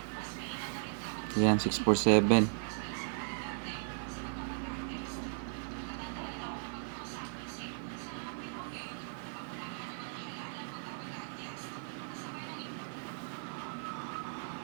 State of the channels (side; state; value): left; silent; 53 dB below the other